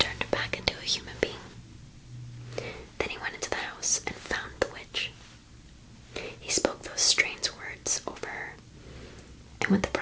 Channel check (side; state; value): both; identical; correlation 1.00